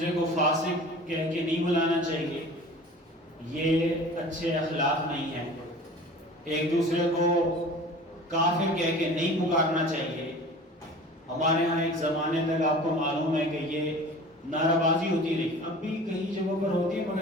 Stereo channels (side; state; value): both; normal; correlation 0.41